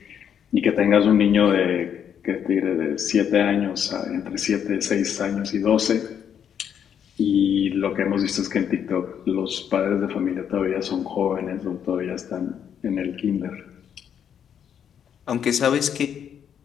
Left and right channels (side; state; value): right; quieter; 8.5 dB